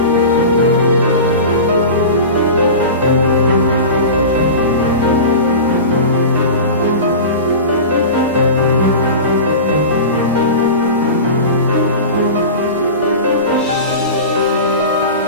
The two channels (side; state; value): both; inverted; correlation -0.31